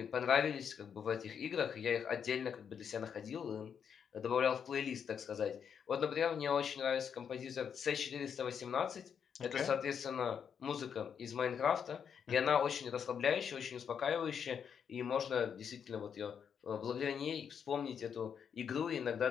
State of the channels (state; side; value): quieter; right; 7.4 dB